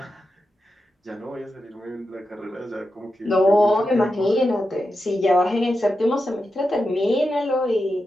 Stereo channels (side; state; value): both; normal; correlation 0.89